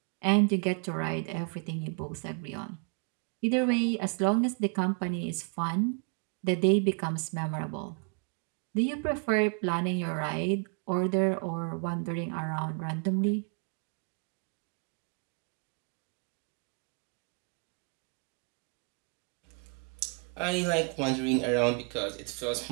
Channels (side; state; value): left; quieter; 38.0 dB